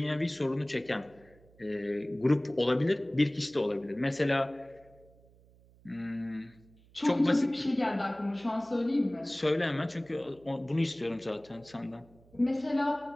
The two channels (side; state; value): right; noise; hum, 27 dB below the sound